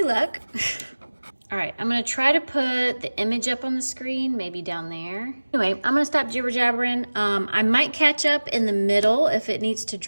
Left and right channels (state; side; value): inverted; both; correlation -1.00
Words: luck. All right, I'm gonna try to put the image up on the screen, maybe down there. Anyway, I'm gonna stop jibber jabbering. I might catch up in the middle if it needs to